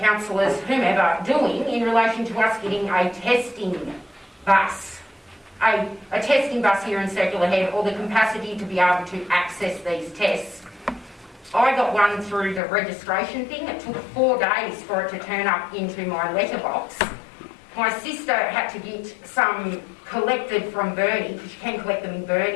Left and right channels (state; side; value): drops out; right; at 12.6 s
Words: whomever, doing in relation to us getting a testing bus? A testing bus here in Circular Head, or the capacity to be able to access these tests. I got one through the registration thing. It took 4 days for it to turn up into my letterbox. My sister had to get some collected from Burnie, because you can collect them in